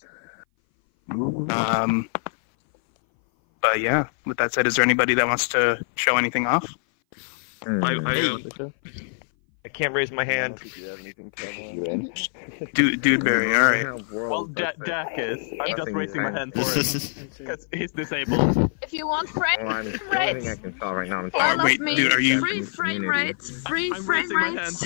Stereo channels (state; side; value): silent; right; 59 dB below the other